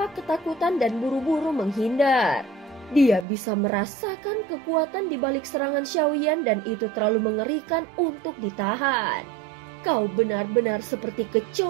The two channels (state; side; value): drops out; left; at 3.2 s